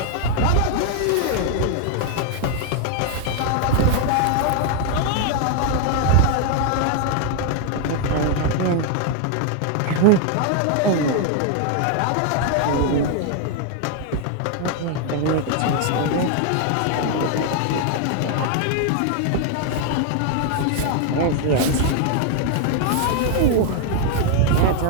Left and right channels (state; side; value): different; both; correlation 0.00